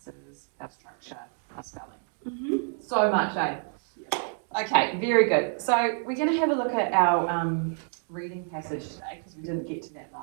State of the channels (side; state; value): left; silent; 59 dB below the other